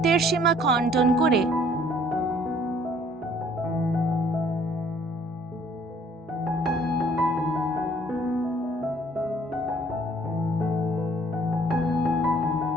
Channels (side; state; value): both; normal; correlation 0.58